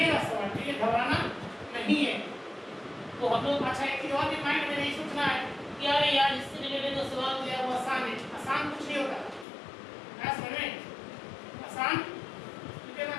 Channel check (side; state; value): right; drops out; at 9.5 s